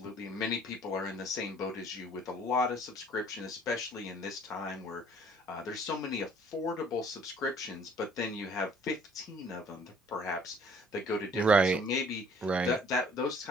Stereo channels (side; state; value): both; normal; correlation 0.56